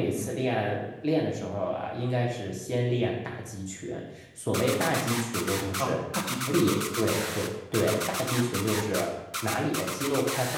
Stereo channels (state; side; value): identical; both; correlation 1.00